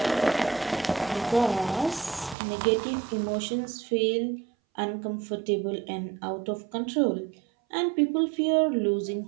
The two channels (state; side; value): drops out; left; at 2.4 s